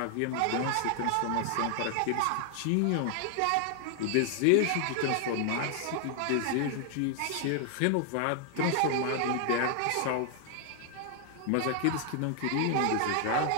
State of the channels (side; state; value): both; different; correlation 0.00